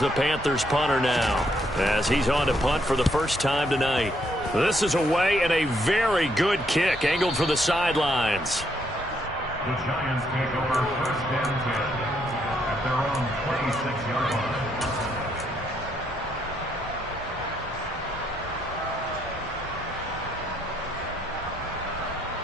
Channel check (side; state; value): both; normal; correlation 0.74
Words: Panthers punter now as he's on to punt for the first time tonight. This is away and a very good kick angled for the sidelines. The Giants take over 1st and 10 at their own 26-yard line.